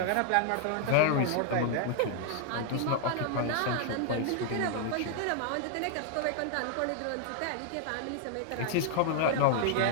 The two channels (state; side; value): different; both; correlation 0.00